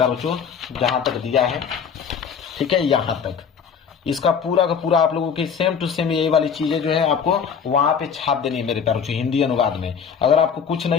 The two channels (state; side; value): quieter; right; 6.8 dB